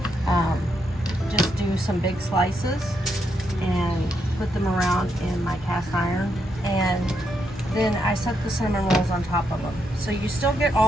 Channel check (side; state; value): both; normal; correlation 0.79